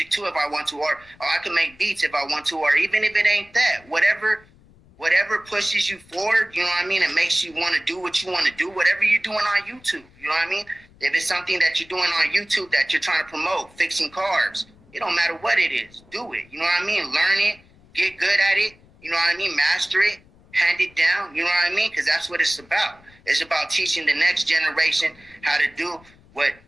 too if I want to, or I could make beats if I want to, or even if it ain't that, whatever pushes you forward, you know what I mean, and makes you want to do what you want to do, whatever you're doing on YouTube, you know what I mean? If it's something that you're doing on YouTube that you're trying to promote, fixing cars, it don't matter what it is, do it, you know what I mean? Learn it, get good at it, you know what I mean? Master it, hand it down, you know what I mean? Because that's what it's about. It's about teaching the next generation how to do what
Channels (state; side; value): noise; left; rumble, 27 dB below the sound